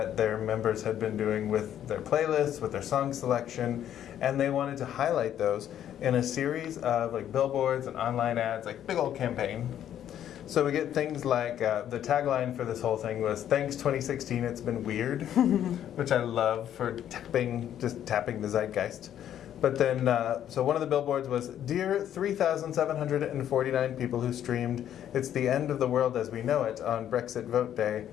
their members had been doing with their playlists, with their song selection, and they wanted to highlight those in a series of like billboards and online ads, like big old campaign. So we get things like, the tagline for this whole thing was, "Thanks 2016, it's been weird," which I love for just tapping the zeitgeist. But then, so one of the billboards was, "Dear 3,749 people who streamed It's the End of the World as We Know It on Brexit Vote Day,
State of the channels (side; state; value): right; quieter; 10.6 dB